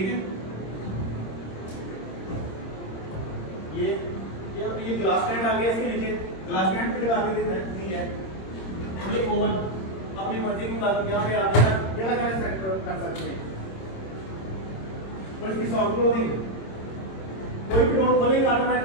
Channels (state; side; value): late; right; 26 ms